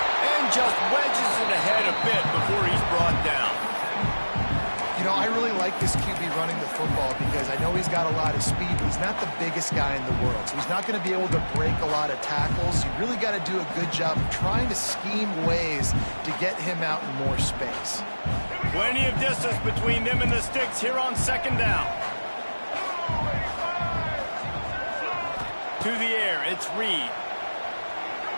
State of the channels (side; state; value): both; inverted; correlation -1.00